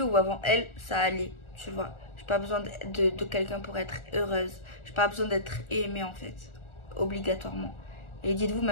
ou avant elle, ça allait, tu vois. J'ai pas besoin de quelqu'un pour être heureuse. J'ai pas besoin d'être aimée en fait, obligatoirement. Et dites-vous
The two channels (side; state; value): right; late; 1.4 ms